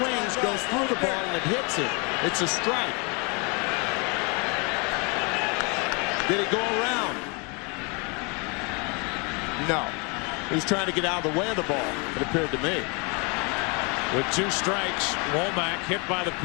goes through the ball, and it hits it, it's a strike. Did it go around? No. He was trying to get out of the way of the ball, it appeared to me. With 2 strikes, Womack hit by the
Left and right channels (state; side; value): quieter; right; 32.3 dB